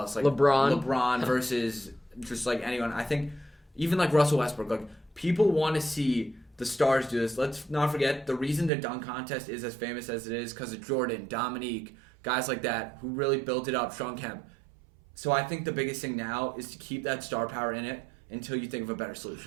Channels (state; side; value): drops out; left; at 8.7 s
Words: Like LeBron versus just like anyone. I think even like Russell Westbrook, like people want to see the stars do this. Let's not forget the reason the dunk contest is as famous as it is because of Jordan, Dominique, guys like that who really built it up, Sean Kemp. So I think the biggest thing now is to keep that star power in it until you think of a better